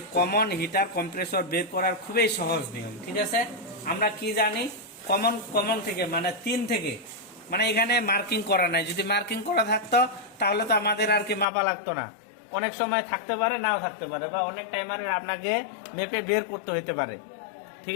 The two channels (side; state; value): right; drops out; at 11.5 s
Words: কমন হিটার কম্প্রেসর বের করার খুবই সহজ নিয়ম, ঠিক আছে। আমরা কি জানি, কমন থেকে মানে 3 থেকে, মানে এখানে মার্কিং করা নাই। যদি মার্কিং করা থাকতো তাহলে তো আমাদের আর কি মাপা লাগতো না। অনেক সময় থাকতে পারে, নাও থাকতে পারে, বা অনেক টাইমারের আপনাকে মেপে বের করতে হতে পারে, ঠিক